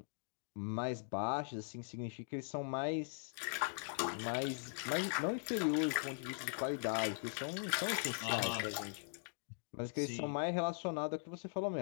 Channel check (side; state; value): right; silent; digital silence